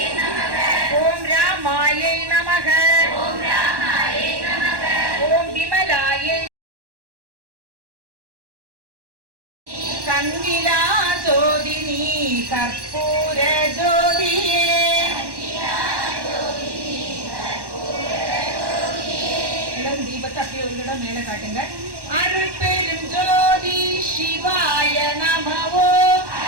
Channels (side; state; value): left; late; 1.1 ms